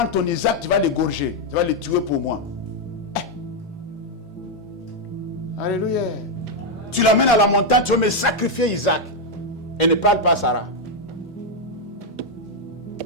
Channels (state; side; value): normal; both; correlation 0.01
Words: ton Isaac, tu vas l'égorger, tu vas le tuer pour moi. Alléluia. Tu l'amènes à la montagne, tu vas me sacrifier Isaac. Et ne parle pas à Sarah.